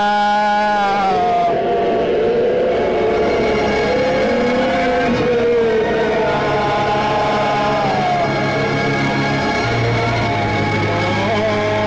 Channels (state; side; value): noise; right; hum, 23 dB below the sound